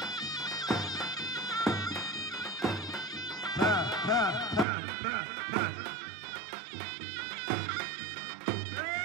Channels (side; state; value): left; drops out; at 4.7 s